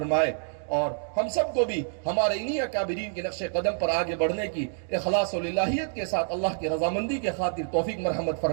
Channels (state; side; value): silent; left; 60 dB below the other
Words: اور ہم سب کو بھی ہمارے انہی اکابرین کے نقش قدم پر آگے بڑھنے کی اخلاص و للہیت کے ساتھ اللہ کی رضامندی کے خاطر توفیق مرحمت